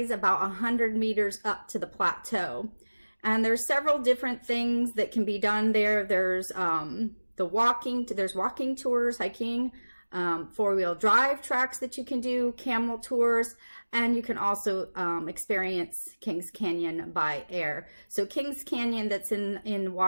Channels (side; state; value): both; inverted; correlation -1.00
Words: about 100 meters up to the plateau. And there's several different things that can be done there. There's there's walking tours, hiking, four-wheel drive tracks that you can do, camel tours, and you can also experience Kings Canyon by air. So Kings Canyon, that's in